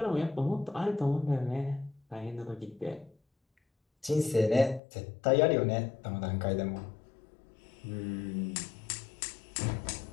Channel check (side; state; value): right; drops out; at 4.8 s